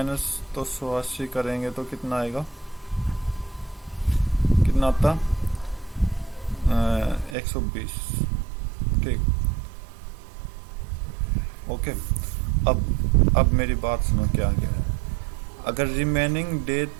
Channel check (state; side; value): drops out; left; at 7.4 s